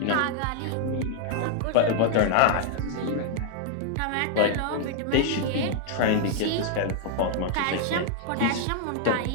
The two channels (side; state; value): both; different; correlation 0.00